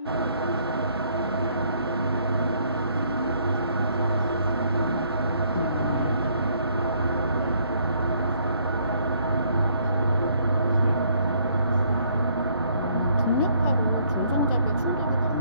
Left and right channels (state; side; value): inverted; both; correlation -0.66